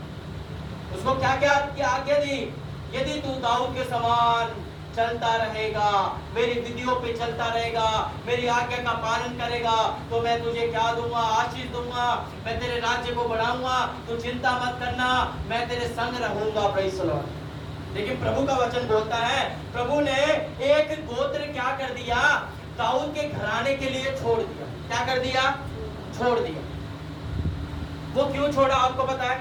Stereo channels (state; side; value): identical; both; correlation 1.00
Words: उसको क्या क्या आज्ञा दी? यदि तू दाऊद के समान चलता रहेगा, मेरी विधियों पे चलता रहेगा, मेरी आज्ञा का पालन करेगा, तो मैं तुझे क्या दूंगा? आशीष दूंगा, मैं तेरे राज्य को बढ़ाऊंगा, तू चिंता मत करना, मैं तेरे संग रहूंगा। Praise the Lord. लेकिन प्रभु का वचन बोलता है, प्रभु ने एक गोत्र क्या कर दिया? दाऊद के घराने के लिए छोड़ दिया। क्या कर दिया? छोड़ दिया। वो क्यों छोड़ा आपको पता है?